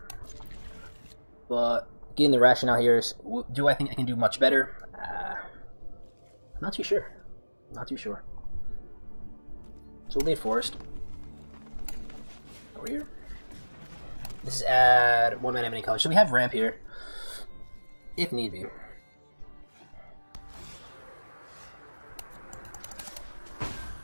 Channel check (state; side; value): inverted; both; correlation -1.00